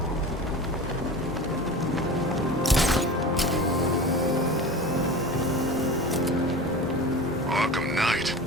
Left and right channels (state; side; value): normal; both; correlation 0.33